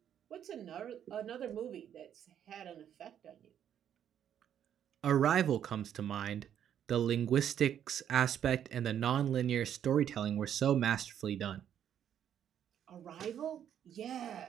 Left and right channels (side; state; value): left; quieter; 9.6 dB